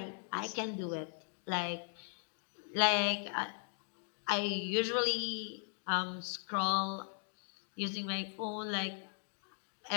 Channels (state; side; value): silent; right; 52 dB below the other